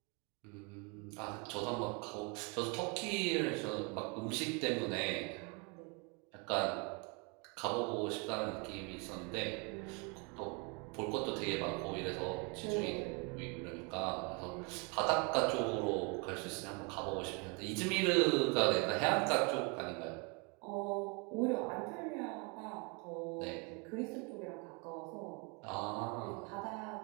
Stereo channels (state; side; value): quieter; left; 32.2 dB